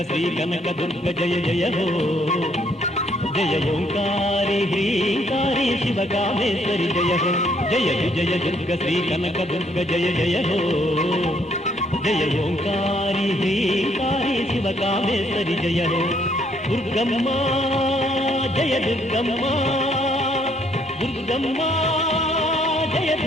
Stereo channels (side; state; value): both; normal; correlation 0.68